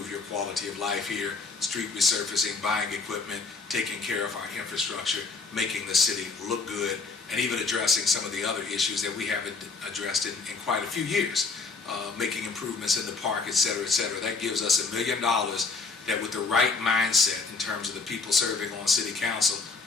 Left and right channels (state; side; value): quieter; right; 4.2 dB